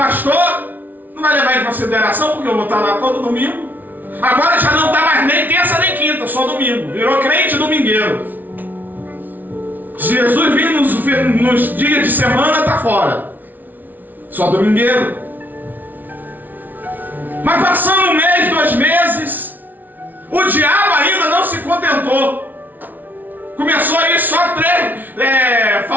não vai levar em consideração porque eu vou estar lá todo domingo. Agora já não está mais nem terça nem quinta, só domingo. Virou crente domingueiro. Se Jesus vir nos dias de semana, está fora. Só domingueiro. Mas passando 1 mês, 2 meses, o diabo ainda não se contentou. Começou a ir só 3,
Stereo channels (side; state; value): left; late; 0.082 ms